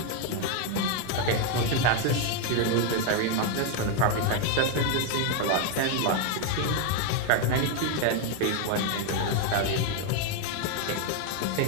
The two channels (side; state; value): both; different; correlation 0.00